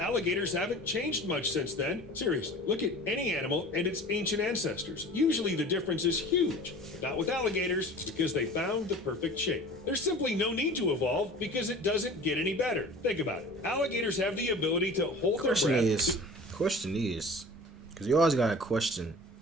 haven't changed much since then. Seriously, look at any animal and its ancient ancestors. Usually the difference is huge. Not with alligators, because they found the perfect shape. There's simply no need to evolve because it doesn't get any better. Think about it. Alligators have the ability to hold their breath. Question is, because you always gotta question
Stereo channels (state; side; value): normal; both; correlation 0.41